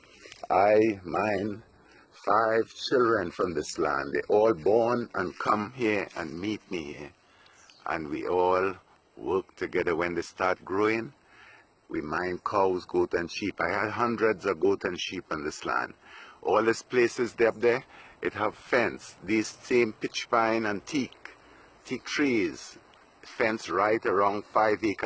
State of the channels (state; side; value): identical; both; correlation 1.00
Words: I mine 5 children from this land. They all born and come here and meet me here. And we all work together. When they start growing, we mine cows, goat and sheep. I had hundreds of goat and sheep on this land. All these places up there, it have fence. These same pitch pine and teak trees, fence right around 5